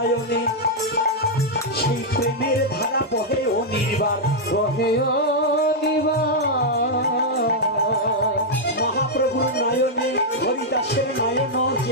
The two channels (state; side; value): normal; both; correlation -0.04